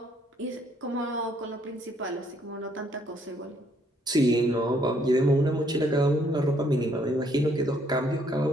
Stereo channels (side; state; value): both; normal; correlation 0.67